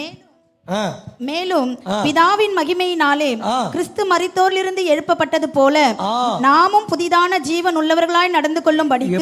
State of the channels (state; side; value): identical; both; correlation 1.00